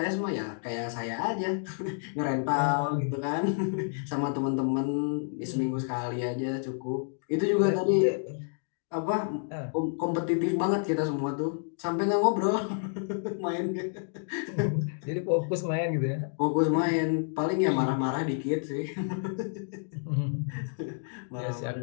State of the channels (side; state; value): right; silent; digital silence